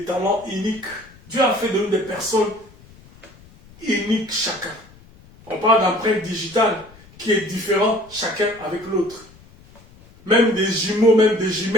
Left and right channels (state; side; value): noise; left; rumble, 25 dB below the sound